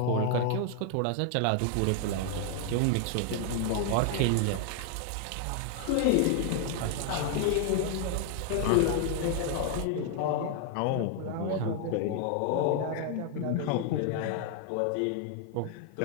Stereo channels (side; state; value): both; different; correlation 0.00